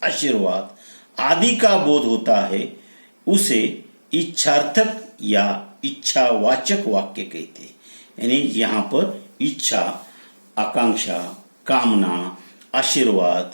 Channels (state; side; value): inverted; both; correlation -1.00